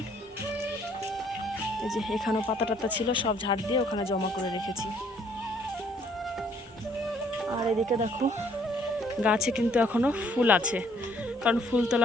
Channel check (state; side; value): normal; both; correlation 0.63